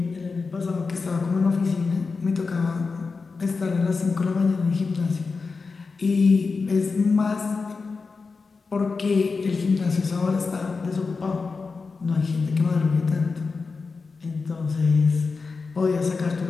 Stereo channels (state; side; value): quieter; right; 4.5 dB